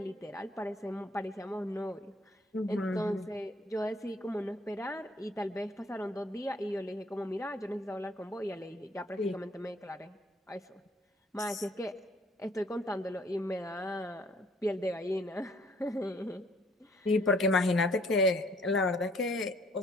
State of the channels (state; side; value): normal; both; correlation 0.60